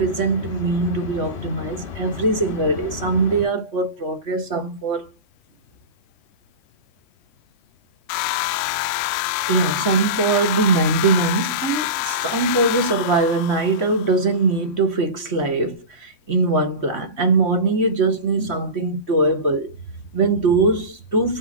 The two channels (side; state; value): right; late; 3.1 ms